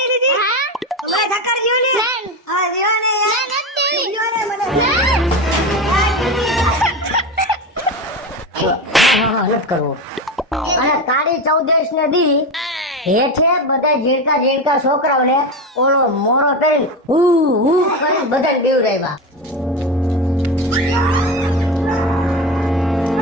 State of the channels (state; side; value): normal; both; correlation 0.21